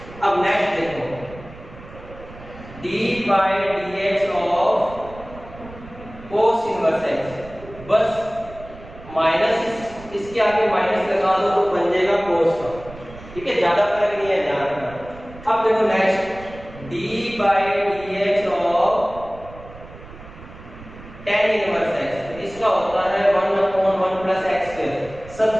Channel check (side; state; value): right; noise; rumble, 17 dB below the sound